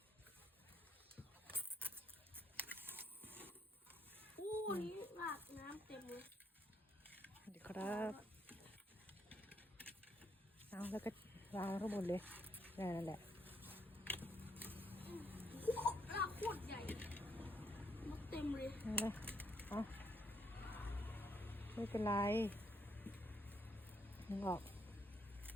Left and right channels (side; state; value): both; normal; correlation 0.73